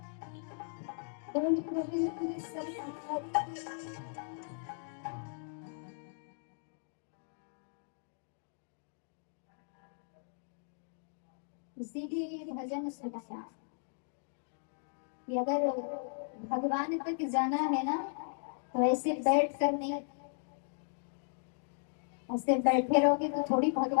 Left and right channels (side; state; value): right; silent; digital silence